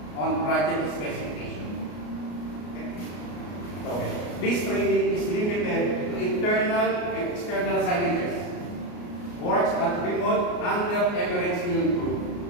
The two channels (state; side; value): late; right; 34 ms